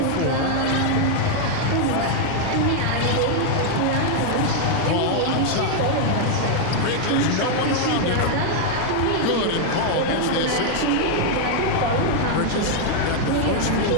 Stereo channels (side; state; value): both; different; correlation 0.00